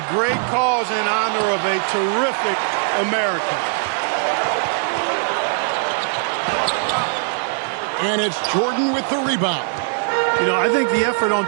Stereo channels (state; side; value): silent; left; digital silence